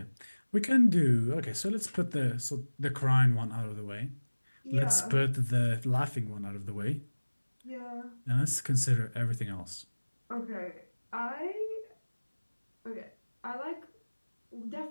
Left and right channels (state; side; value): inverted; both; correlation -1.00